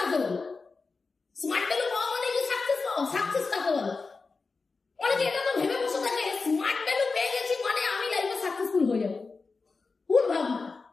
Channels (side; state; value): right; quieter; 4.3 dB